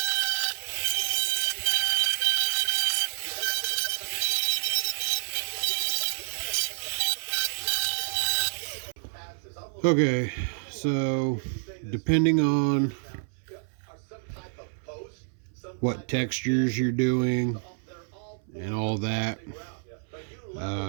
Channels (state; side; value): silent; left; 59 dB below the other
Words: Okay, so depending on what textures you're doing and all that,